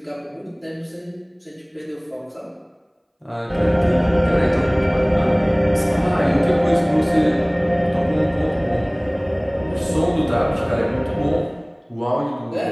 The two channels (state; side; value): identical; both; correlation 1.00